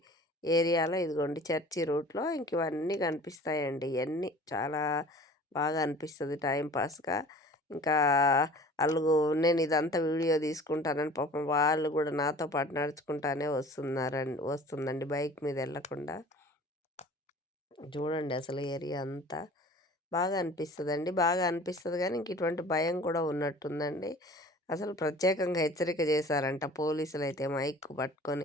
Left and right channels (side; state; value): both; normal; correlation 0.45